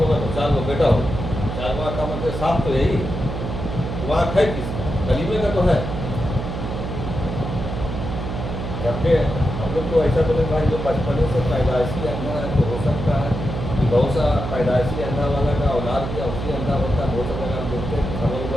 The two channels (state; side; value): noise; right; hum, 5 dB below the sound